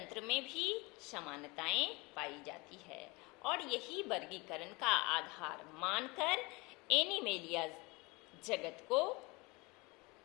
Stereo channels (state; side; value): quieter; right; 25.6 dB